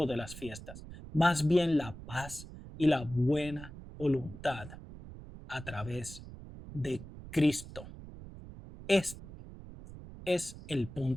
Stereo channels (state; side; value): noise; right; rumble, 14 dB below the sound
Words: de las fiestas. Más bien la paz y la buena voluntad a través de Cristo. Este es el